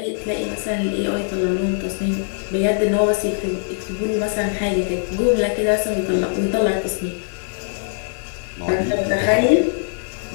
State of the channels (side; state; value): right; silent; digital silence